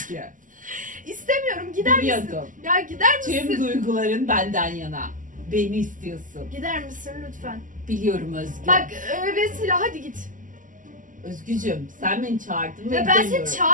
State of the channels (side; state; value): left; late; 0.38 ms